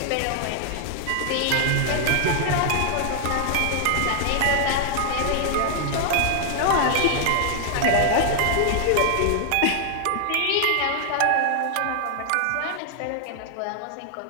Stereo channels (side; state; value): both; different; correlation 0.00